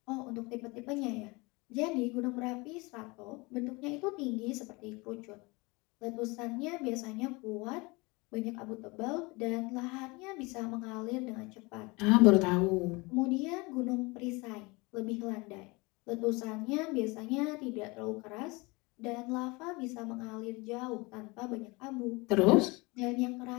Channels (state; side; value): quieter; right; 25.5 dB